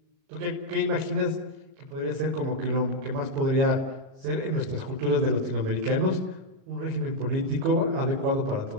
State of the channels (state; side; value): late; left; 37 ms